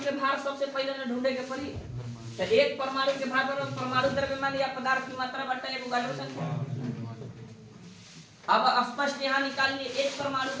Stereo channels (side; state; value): both; identical; correlation 1.00